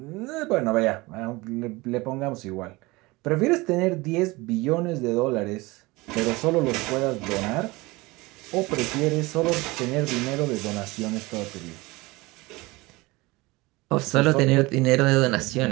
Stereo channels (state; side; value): quieter; left; 22.4 dB